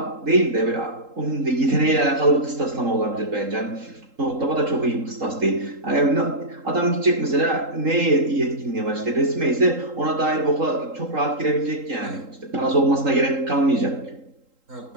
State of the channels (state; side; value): late; left; 3.8 ms